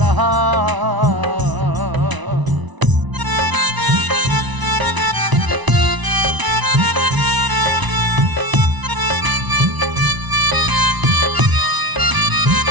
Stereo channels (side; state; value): left; late; 1.0 ms